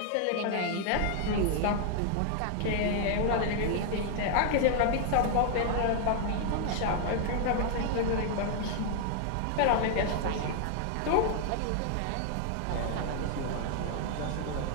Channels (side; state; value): both; different; correlation 0.00